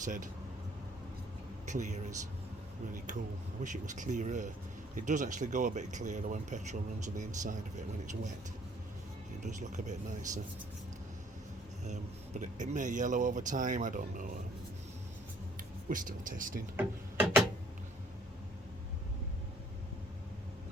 clear is really cool. I wish it was clearer. It does actually go a bit clearer when petrol runs on the inside of it when it's wet. It does look a bit nicer. But it may yellow over time, I don't know. We're still testing.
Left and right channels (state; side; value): normal; both; correlation 0.60